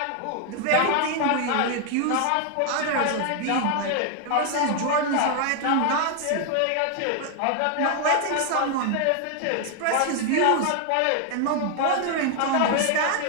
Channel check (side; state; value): both; different; correlation 0.00